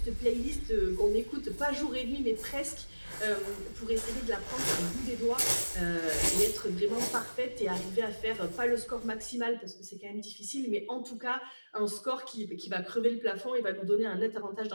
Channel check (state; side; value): inverted; both; correlation -1.00